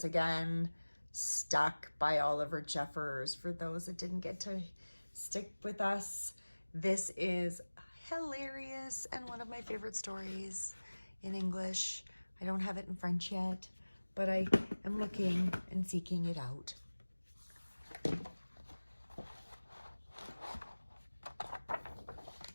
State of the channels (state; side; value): inverted; both; correlation -1.00